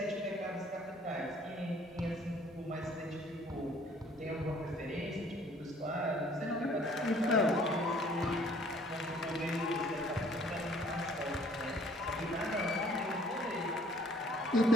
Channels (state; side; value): normal; both; correlation 0.57